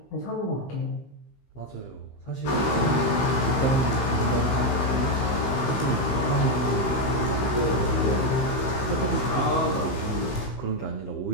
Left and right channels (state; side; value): late; right; 15 ms